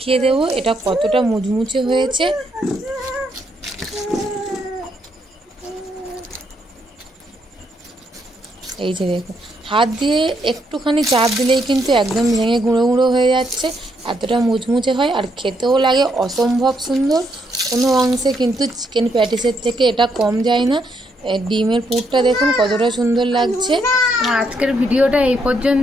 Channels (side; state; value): both; normal; correlation 0.75